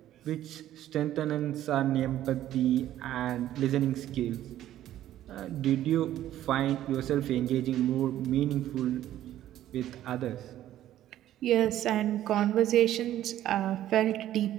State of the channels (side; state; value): left; quieter; 12.7 dB